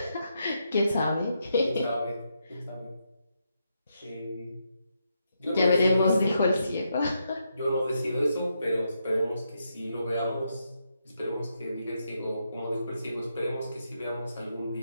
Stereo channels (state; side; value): inverted; both; correlation -0.81